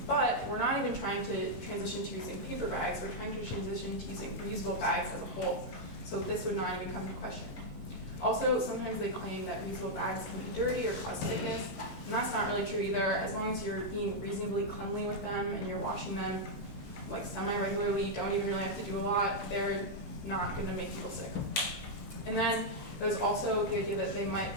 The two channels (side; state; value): both; normal; correlation -0.03